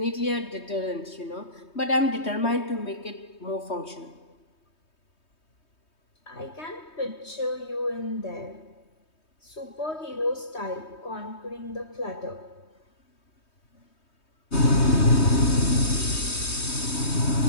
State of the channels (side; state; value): right; late; 3.2 ms